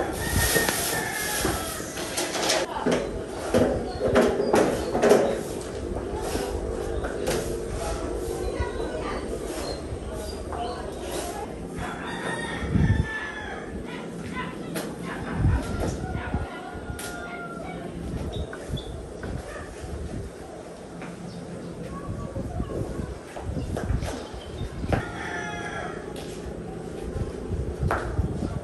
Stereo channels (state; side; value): identical; both; correlation 1.00